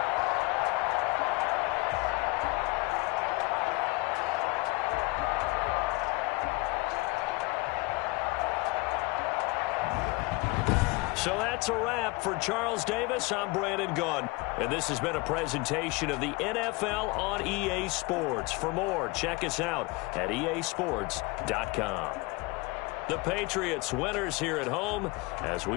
So that's a wrap for Charles Davis. I'm Brandon Gunn. And this has been a presentation of the NFL on EA Sports. For more, check us out at easports.com. The Patriots winners here at home as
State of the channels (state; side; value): quieter; right; 24.6 dB